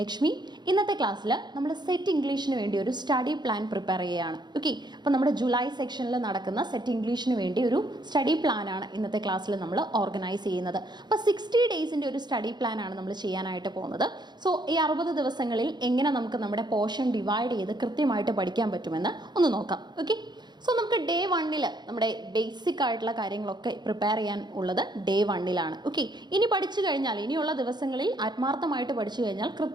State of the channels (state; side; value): late; left; 0.21 ms